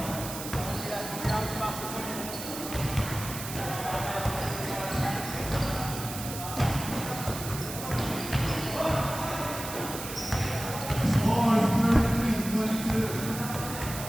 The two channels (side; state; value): right; noise; hiss, 9 dB below the sound